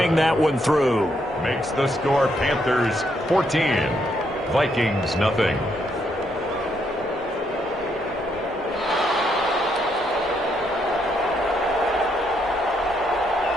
that one through. Makes the score Panthers 14. Vikings nothing.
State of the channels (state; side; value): normal; both; correlation 0.75